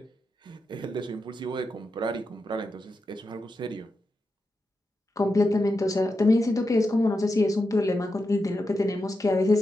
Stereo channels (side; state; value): both; normal; correlation 0.88